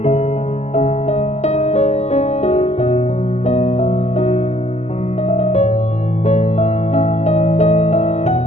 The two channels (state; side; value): late; right; 0.32 ms